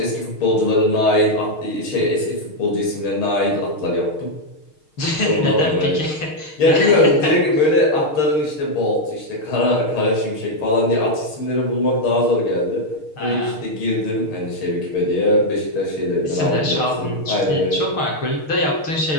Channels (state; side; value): late; right; 6.5 ms